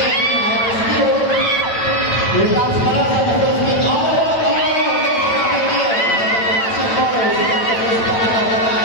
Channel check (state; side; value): late; right; 9.0 ms